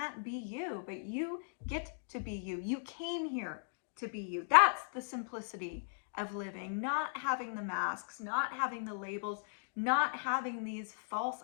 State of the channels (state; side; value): silent; right; digital silence